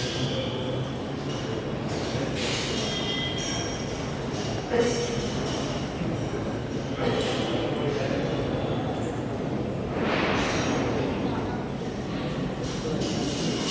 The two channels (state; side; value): identical; both; correlation 1.00